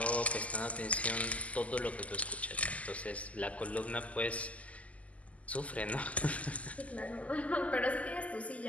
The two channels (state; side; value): late; right; 0.065 ms